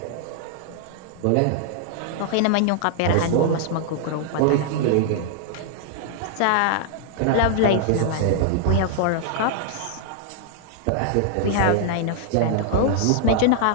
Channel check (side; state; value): both; different; correlation 0.00